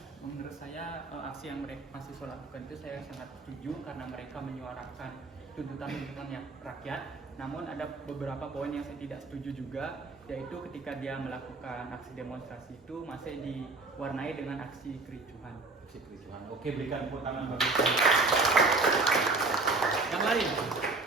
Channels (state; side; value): quieter; left; 3.5 dB